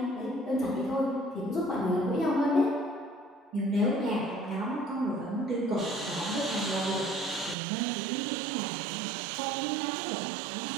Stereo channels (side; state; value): left; drops out; at 7.6 s